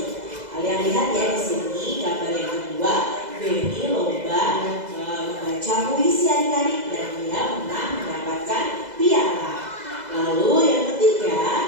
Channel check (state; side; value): late; left; 2.0 ms